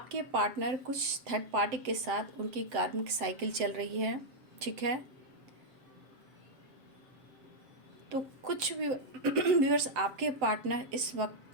पार्टनर कुछ थर्ड पार्टी के साथ उनकी कार्मिक साइकिल चल रही है, ठीक है। तो कुछ व्यूअर्स आपके पार्टनर इस वक्त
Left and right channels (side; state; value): left; late; 7.8 ms